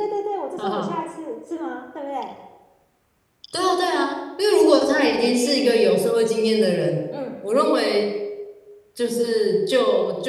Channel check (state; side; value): identical; both; correlation 1.00